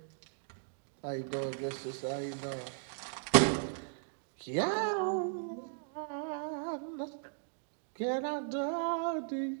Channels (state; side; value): silent; left; digital silence